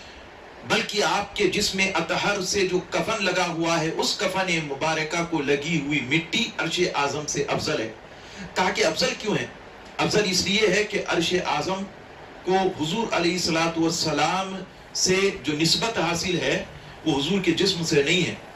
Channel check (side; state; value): both; identical; correlation 1.00